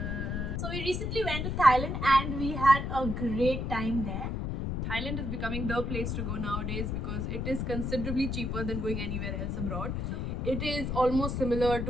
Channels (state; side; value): noise; left; rumble, 2 dB below the sound